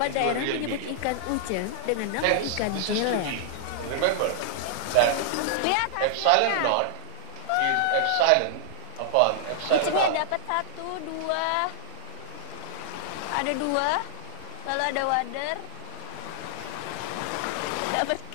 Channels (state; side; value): different; both; correlation -0.01